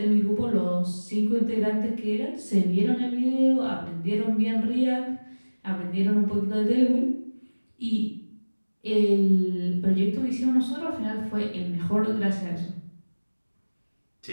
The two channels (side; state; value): both; inverted; correlation -1.00